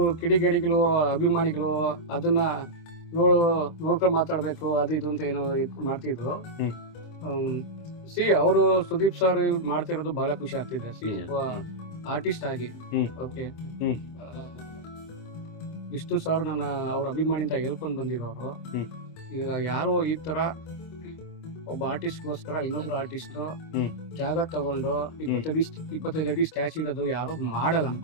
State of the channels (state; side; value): late; right; 25 ms